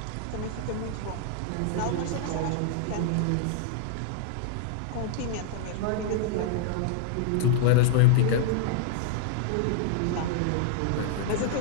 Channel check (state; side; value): different; both; correlation 0.00